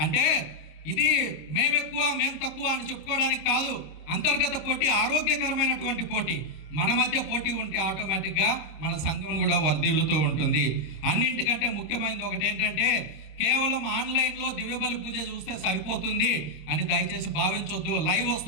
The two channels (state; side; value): late; right; 26 ms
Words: అంటే ఇది మేమెక్కువ మేము తక్కువ అని చెప్పుకోవడానికి కాదు. అంతర్గత పోటీ ఆరోగ్యకరమైనటువంటి పోటీ. మన మధ్య పోటీ ఉంటే ఆటోమేటిక్గా మన సంఘం కూడా వర్ధిల్లుతూ ఉంటుంది. అన్నింటికంటే ముఖ్యమైనది ఒకటి ఏంటంటే కేవలం ఆన్లైన్లో దివ్యబలి పూజ చూస్తే సరిపోతుంది అని దయచేసి భావించొద్దు. లైవ్